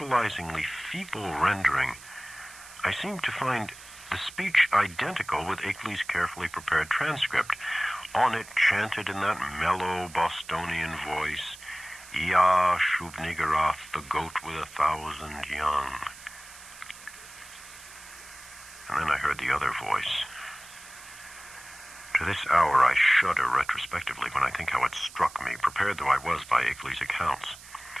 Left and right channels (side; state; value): right; noise; hiss, 18 dB below the sound